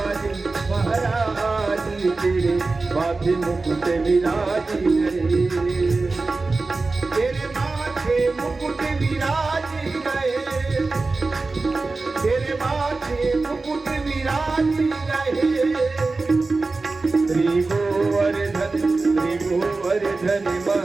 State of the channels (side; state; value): left; quieter; 3.7 dB